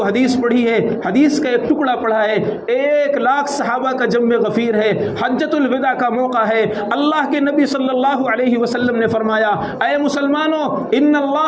حدیث پڑھی ہے، حدیث کا ایک ٹکڑا پڑھا ہے، 1,00,000 صحابہ کا جمع غفیر ہے، حجۃ الوداع کا موقع ہے۔ اللہ کے نبی صلی اللہ علیہ وسلم نے فرمایا، اے مسلمانوں، ان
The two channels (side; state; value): both; identical; correlation 1.00